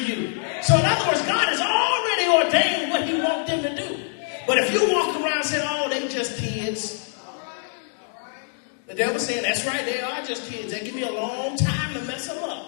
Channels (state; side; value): silent; right; 57 dB below the other